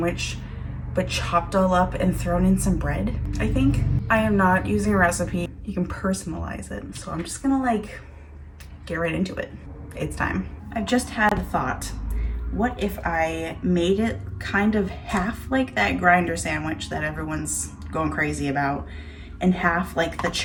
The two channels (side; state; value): both; identical; correlation 1.00